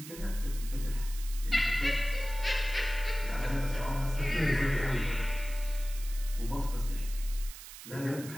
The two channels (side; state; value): right; noise; hiss, 14 dB below the sound